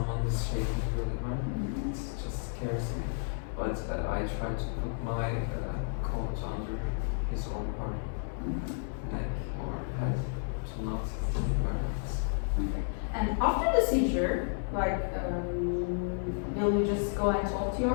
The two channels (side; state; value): right; silent; 56 dB below the other